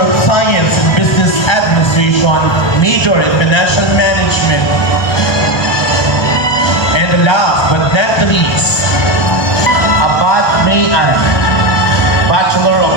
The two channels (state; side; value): late; right; 1.2 ms